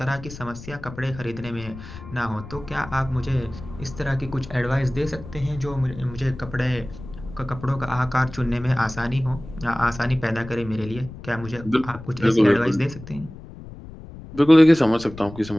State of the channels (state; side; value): noise; left; rumble, 14 dB below the sound